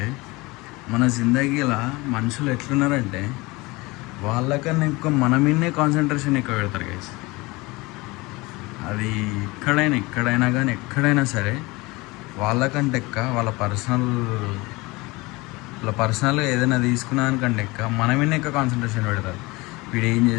మన జిందగీలో మనుషులు ఎట్లున్నారంటే వాళ్ళకన్నా ఎక్కువ మన మీదనే కాన్సన్ట్రేషన్ ఎక్కువ పెడతారు గైస్. అది ఎక్కడైనా కానీ ఎక్కడైనా సరే వాళ్ళకంటే ఎక్క వాళ్ళ పర్సనల్ ఏదైనా తీసుకున్నానికంటే ఎక్క మన మీదనే ఎక్కువ కాన్సన్ట్రేషన్ పెడతారు. వీడు ఏం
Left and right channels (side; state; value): right; quieter; 23.2 dB